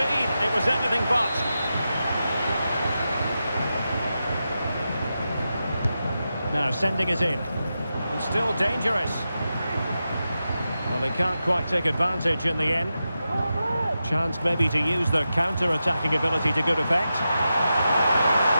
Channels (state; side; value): inverted; both; correlation -0.90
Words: It was anything but. Now sending it in. And still dangerous. Well, they can't quite take advantage in the end. Chance maybe to use their counter-attacking ability to good effect.